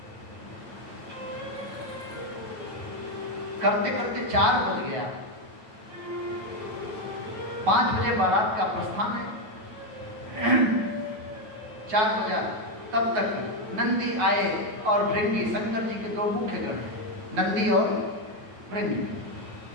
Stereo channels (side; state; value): left; late; 9.3 ms